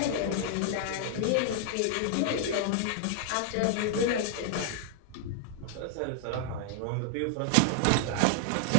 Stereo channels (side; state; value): both; different; correlation 0.00